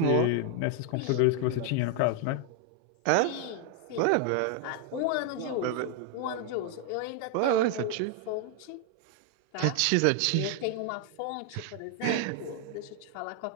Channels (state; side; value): different; both; correlation 0.00